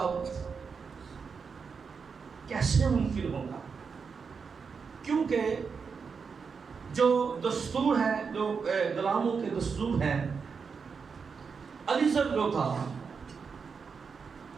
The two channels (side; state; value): left; quieter; 5.6 dB